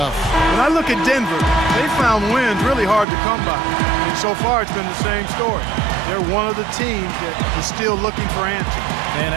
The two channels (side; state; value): left; drops out; at 3.1 s